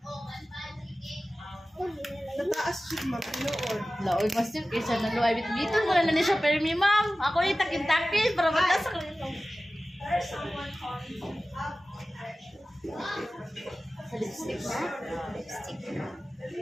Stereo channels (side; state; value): both; normal; correlation 0.96